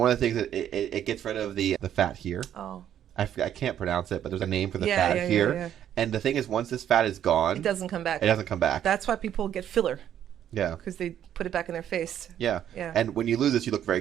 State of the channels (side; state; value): left; quieter; 10.4 dB